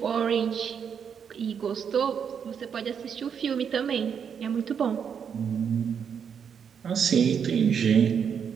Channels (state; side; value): quieter; left; 7.4 dB